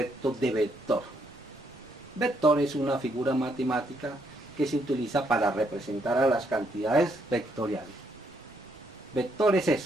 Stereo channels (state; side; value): noise; right; rumble, 28 dB below the sound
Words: de vector. Vector es una figura matemática que se utiliza para representar a las cantidades vectoriales. Vector es